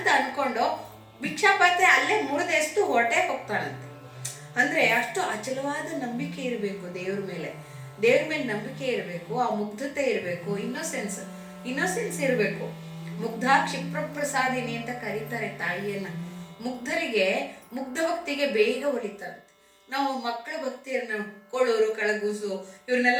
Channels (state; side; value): identical; both; correlation 1.00